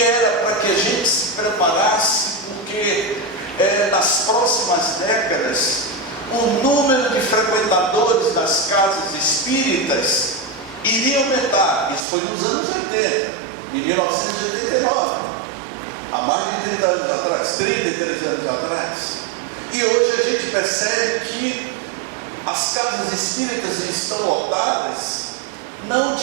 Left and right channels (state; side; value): drops out; left; at 12.0 s